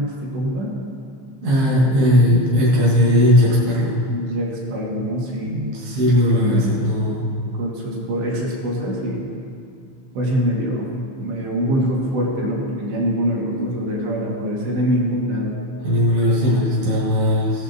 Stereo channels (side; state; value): left; late; 15 ms